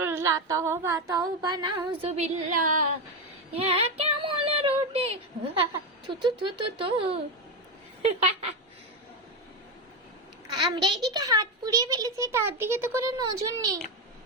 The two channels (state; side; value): normal; both; correlation 0.10